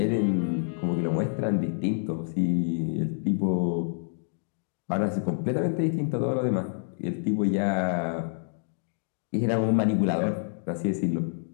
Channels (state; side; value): silent; right; digital silence